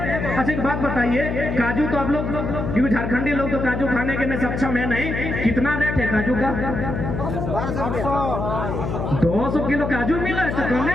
अच्छा एक बात बताइए, काजू तो आप लोग, क्योंकि झारखंडी लोग तो काजू खाने के में सक्षम है नहीं, कितना रेट है काजू का? 200 किलो काजू मिला है तो कौन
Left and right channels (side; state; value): left; noise; hum, 3 dB below the sound